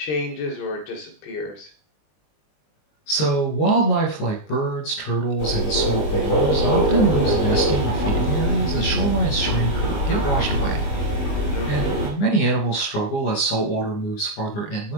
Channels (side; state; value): right; late; 20 ms